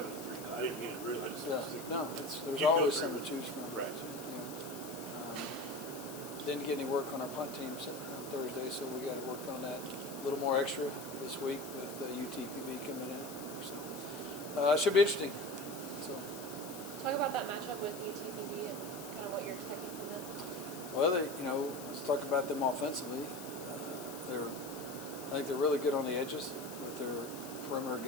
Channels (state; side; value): noise; left; hiss, 13 dB below the sound